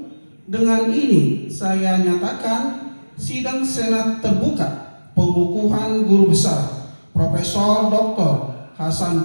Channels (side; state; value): both; inverted; correlation -1.00